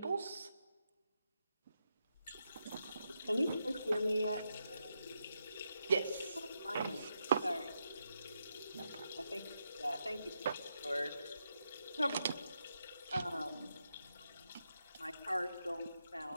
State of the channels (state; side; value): inverted; both; correlation -0.84